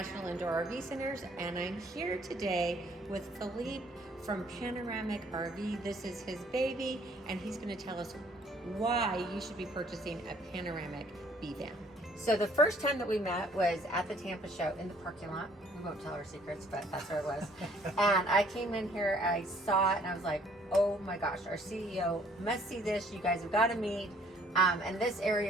Indoor RV Centers, and I'm here today with Philippe from Panoramic RV. This is his baby, and he's going to tell us why you should be purchasing a Panoramic B van. So the first time that we met was at the Tampa show in the parking lot. We won't tell our secrets, but that's where it was. And I came in here, I saw it, and I was like, oh my gosh, our CEO must see this. You guys have got to meet. And this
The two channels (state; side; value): normal; both; correlation 0.60